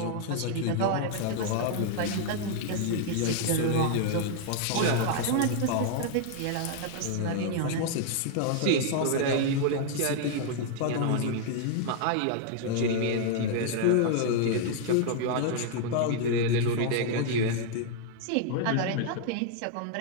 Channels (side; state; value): both; different; correlation 0.00